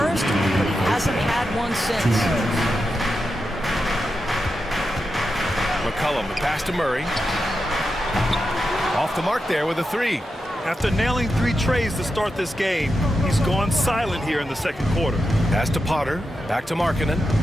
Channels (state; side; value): normal; both; correlation 0.89